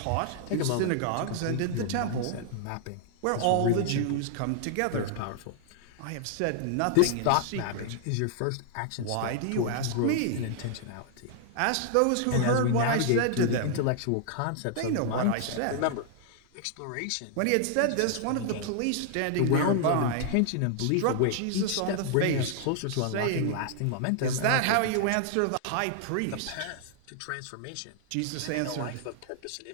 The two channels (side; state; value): both; different; correlation 0.00